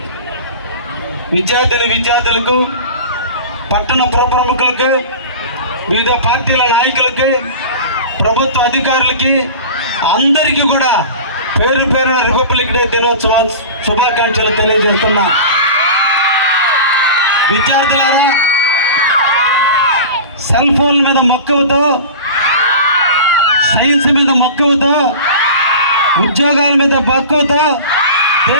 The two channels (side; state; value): both; inverted; correlation -0.34